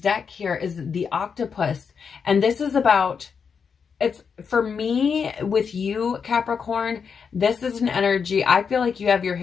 here is the octopus. And this is about, it's for me with you, Capricorn, this is an energy. I feel like you have your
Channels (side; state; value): right; quieter; 6.2 dB